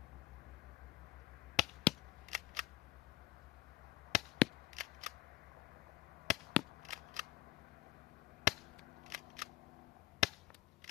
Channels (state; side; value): quieter; right; 16.2 dB